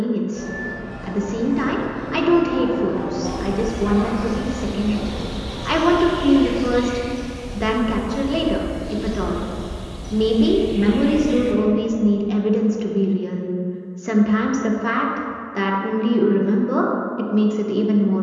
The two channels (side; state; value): both; identical; correlation 1.00